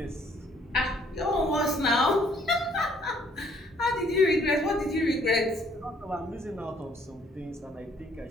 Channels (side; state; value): both; normal; correlation 0.63